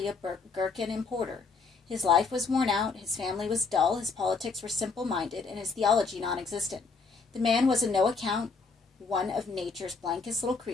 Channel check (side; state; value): right; quieter; 4.6 dB